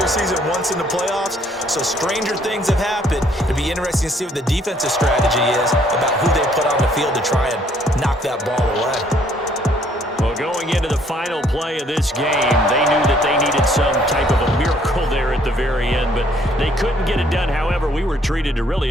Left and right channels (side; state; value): both; normal; correlation 0.64